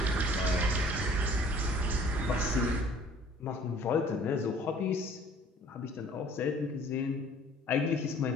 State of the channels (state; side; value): normal; both; correlation 0.53